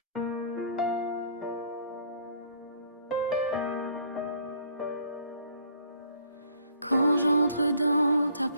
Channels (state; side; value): inverted; both; correlation -0.58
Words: Quand j'entre dans ta